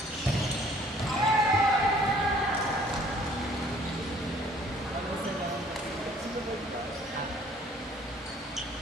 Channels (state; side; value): normal; both; correlation 0.57